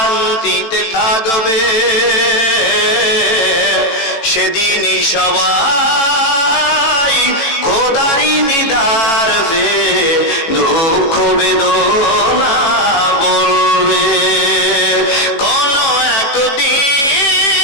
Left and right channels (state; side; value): late; right; 18 ms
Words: থাকবে, সেদিনই সবাই খোদারি দিদার পে দুঃখ বেদনা বলবে। কোন একদিন